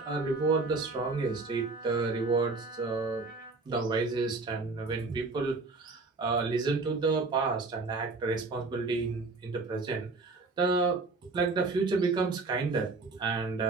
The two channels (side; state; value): left; quieter; 3.7 dB